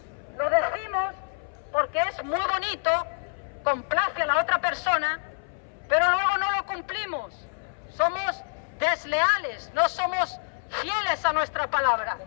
Lo decimos porque es muy bonito, complace a la otra persona, pero luego no lo cumplimos. Somos desleales, no somos fieles a nuestra palabra.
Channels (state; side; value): silent; right; 60 dB below the other